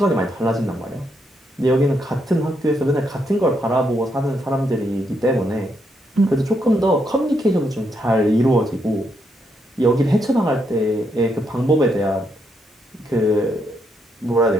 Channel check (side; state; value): both; normal; correlation 0.78